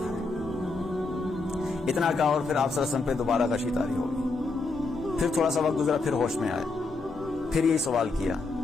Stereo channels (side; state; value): right; quieter; 3.7 dB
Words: اتنا کہا اور پھر آپ صلی اللہ علیہ وسلم پہ دوبارہ غشی طاری ہو گئی۔ پھر تھوڑا سا وقت گزرا، پھر ہوش میں آئے، پھر یہی سوال کیا